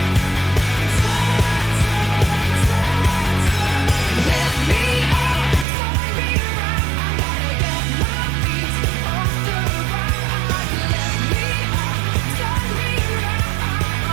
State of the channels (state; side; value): drops out; left; at 5.7 s